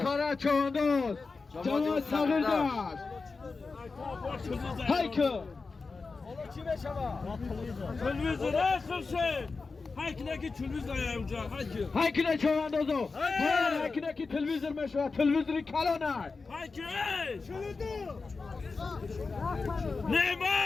چواندوز جوان صغیر داشت هایکو تلویزیون خورشید هایکنه که تلویزیون اونجا هایکنه چواندوزو هایکنه که تلویزیون میشه تلویزیون کلانه هایکنه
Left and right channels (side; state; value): right; quieter; 4.3 dB